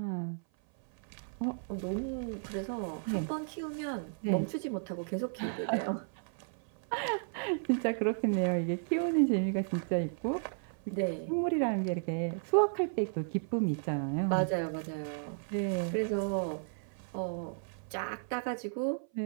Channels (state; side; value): silent; left; 55 dB below the other